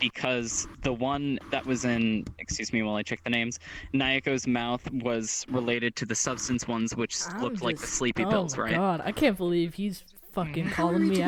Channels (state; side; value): identical; both; correlation 1.00